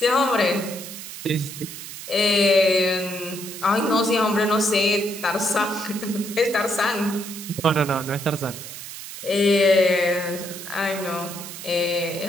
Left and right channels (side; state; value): right; noise; hiss, 11 dB below the sound